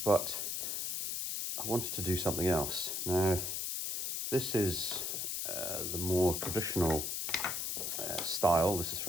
But I wanted to do something else. Now, this is the more traditional style. This is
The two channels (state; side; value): noise; left; hiss, 2 dB below the sound